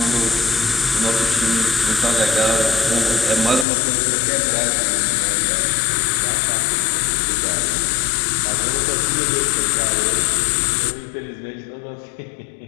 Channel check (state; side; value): drops out; right; at 3.7 s